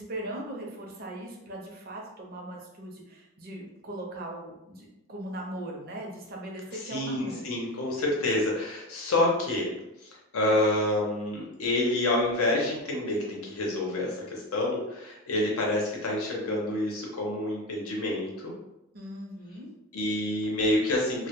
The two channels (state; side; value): normal; both; correlation 0.23